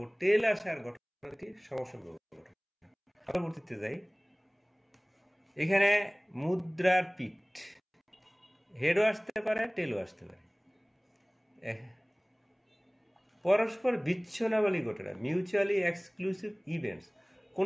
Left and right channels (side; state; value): both; identical; correlation 1.00